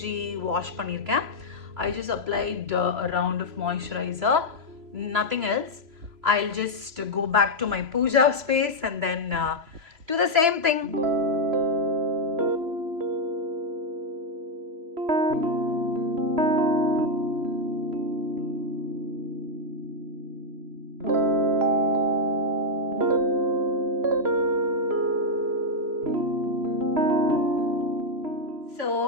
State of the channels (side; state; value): left; late; 3.0 ms